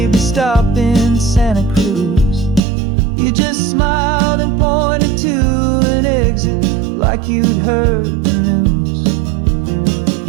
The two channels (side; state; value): left; drops out; at 2.6 s